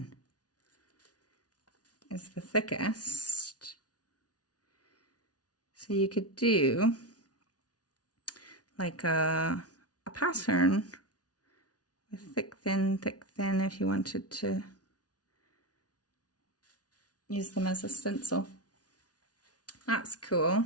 is the thickest. So you could do like a pattern with thick, thin if you wanted to use them as a stencil. That's cool.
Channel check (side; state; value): right; late; 0.68 ms